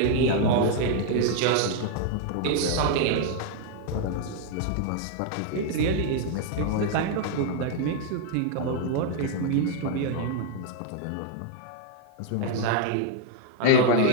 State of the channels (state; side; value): different; both; correlation 0.00